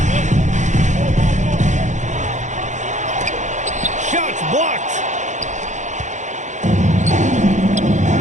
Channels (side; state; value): left; late; 0.35 ms